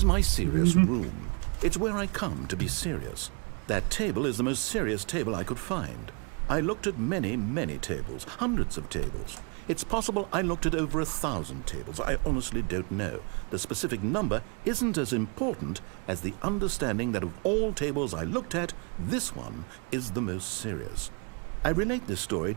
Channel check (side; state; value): left; quieter; 34.8 dB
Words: my serious room. It's where I come to be serious. That table is the most serious table I could find. I looked at many, many tables, hundreds of tables. It's possible I looked at over 1,000 tables. I honestly don't know. The specific number isn't as important as the understanding that of all tables I looked at, this one is the most serious. I relate this story